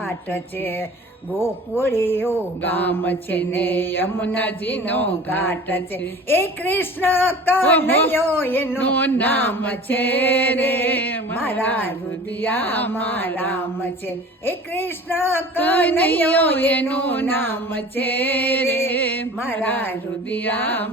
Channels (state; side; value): normal; both; correlation 0.41